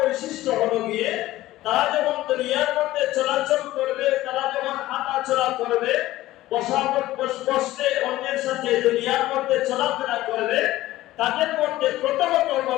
হলো গিয়ে তারা যখন দুনিয়ার মধ্যে চলাচল করবে, তারা যখন হাঁটাচলা করবে, বসতে অন্যের সাথে দুনিয়ার মধ্যে চলাফেরা করবে, তাদের মধ্যে প্রথমত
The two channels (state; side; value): quieter; right; 16.1 dB